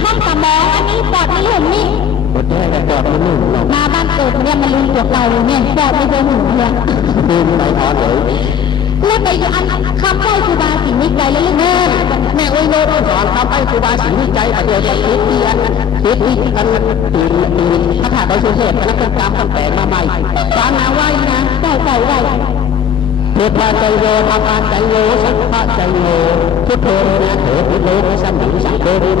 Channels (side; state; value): right; quieter; 8.2 dB